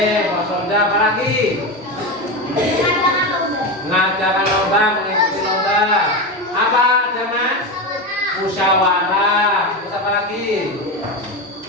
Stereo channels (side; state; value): both; normal; correlation 0.17